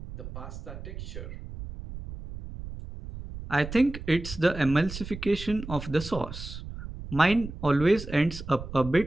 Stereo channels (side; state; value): right; noise; rumble, 11 dB below the sound